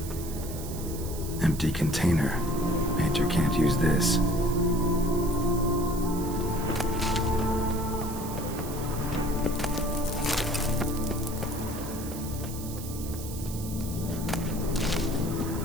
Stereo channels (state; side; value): noise; right; hiss, 12 dB below the sound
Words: Empty container. Painter can't use this.